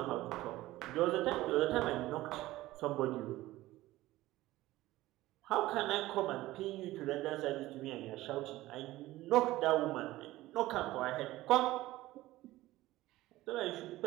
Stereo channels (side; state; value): left; quieter; 17.0 dB